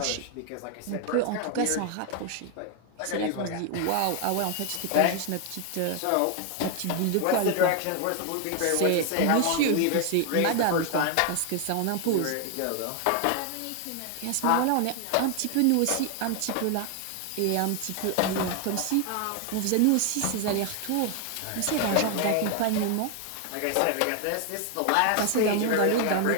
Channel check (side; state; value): both; different; correlation 0.01